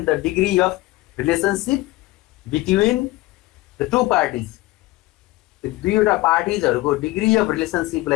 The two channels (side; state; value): right; quieter; 19.1 dB